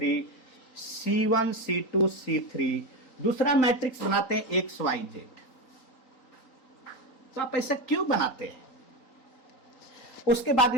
C1 C2 C3, दूसरा मैट्रिक्स बनाते हैं XYZ। तो आप ऐसा क्यों बनाते हैं? उसके बाद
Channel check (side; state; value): right; late; 4.1 ms